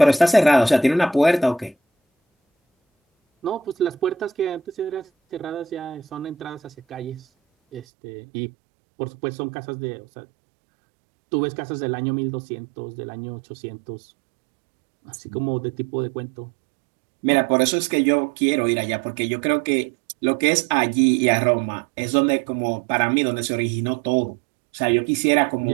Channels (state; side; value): drops out; left; at 7.9 s